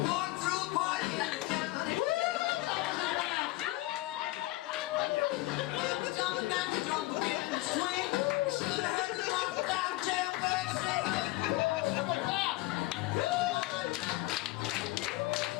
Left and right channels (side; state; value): right; quieter; 19.3 dB